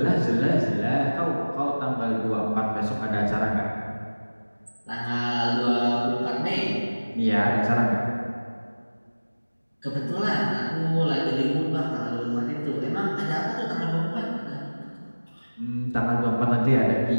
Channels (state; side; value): inverted; both; correlation -1.00